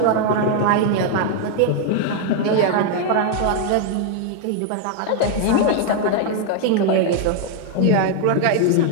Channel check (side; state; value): both; different; correlation 0.00